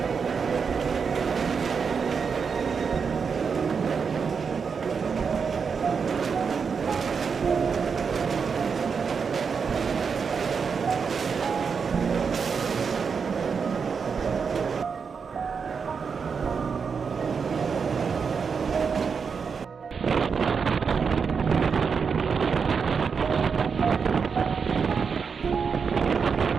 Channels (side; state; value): left; quieter; 5.9 dB